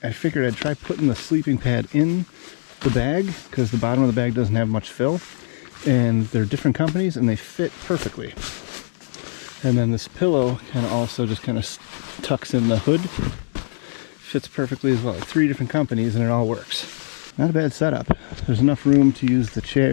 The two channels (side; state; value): right; silent; digital silence